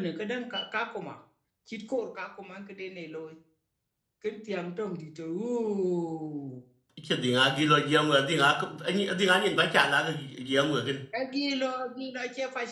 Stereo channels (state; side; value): identical; both; correlation 1.00